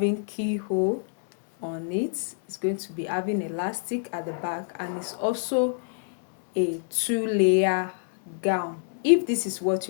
keyhole on it. It's going to be having elastic at the back, and it's also a 2-layer gown. If this is what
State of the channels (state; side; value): silent; right; digital silence